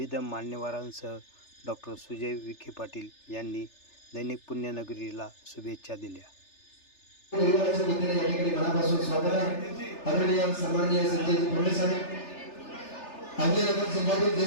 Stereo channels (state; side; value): late; right; 3.3 ms